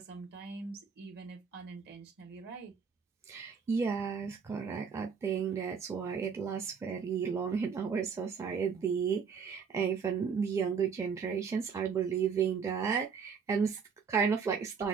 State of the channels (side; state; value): left; quieter; 6.2 dB